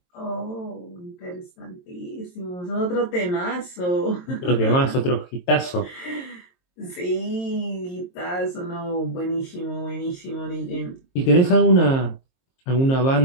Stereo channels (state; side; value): late; right; 22 ms